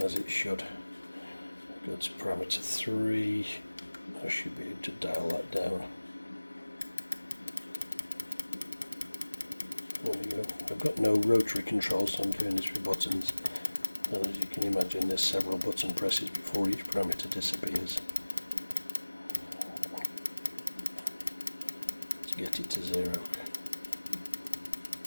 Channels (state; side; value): inverted; both; correlation -1.00